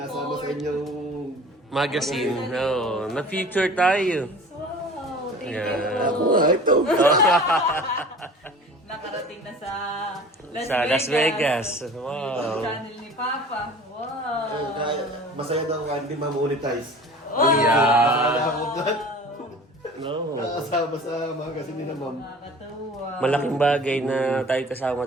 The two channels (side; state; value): both; normal; correlation 0.43